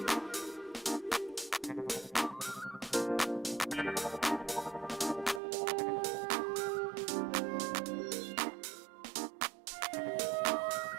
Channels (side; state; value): left; drops out; at 5.4 s